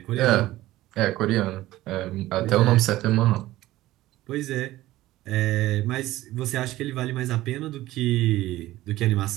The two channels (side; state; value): left; quieter; 16.3 dB